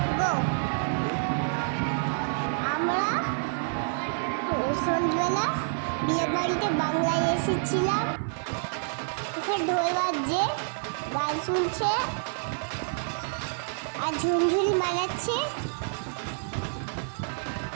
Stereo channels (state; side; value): silent; left; 59 dB below the other